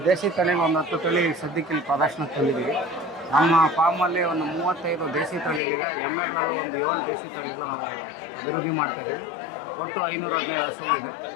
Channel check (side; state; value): right; drops out; at 5.6 s